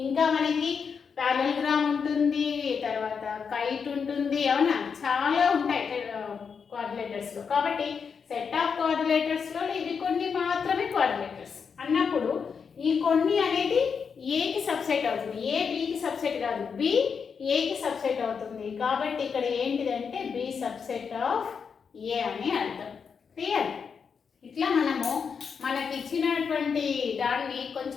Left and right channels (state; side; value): quieter; right; 6.1 dB